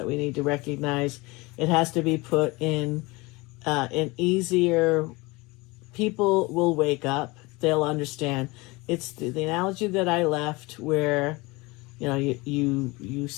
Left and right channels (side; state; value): right; quieter; 24.0 dB